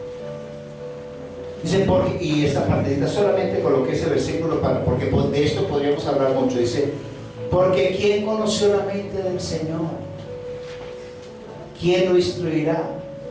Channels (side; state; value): both; identical; correlation 1.00